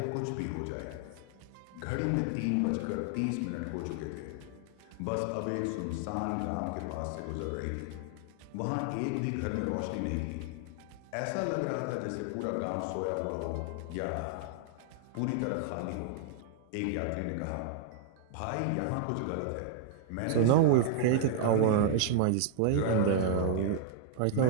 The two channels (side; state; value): both; different; correlation 0.00